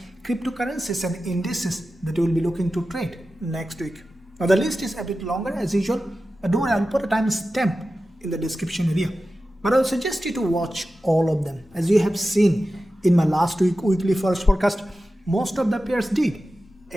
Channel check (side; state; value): both; normal; correlation 0.93